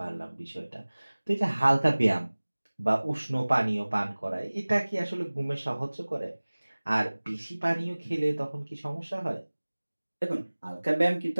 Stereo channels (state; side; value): inverted; both; correlation -1.00